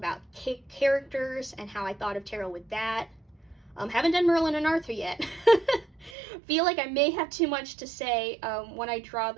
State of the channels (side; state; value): left; drops out; at 6.2 s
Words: characters and how I thought of tarot with that. Haven't done Merlin and Arthur yet. Feel like I may have too much to say when I draw